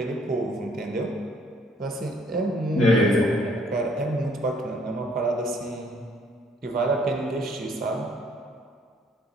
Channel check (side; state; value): both; normal; correlation 0.63